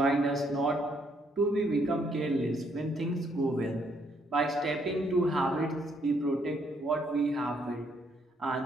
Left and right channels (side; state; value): both; normal; correlation 0.71